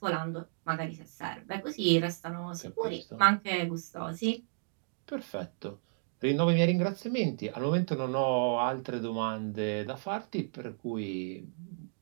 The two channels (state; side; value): silent; left; digital silence